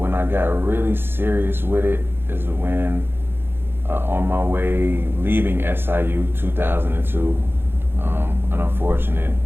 I got really serious with it is when on my way leaving SIU 2002, an unfortunate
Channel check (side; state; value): left; late; 0.10 ms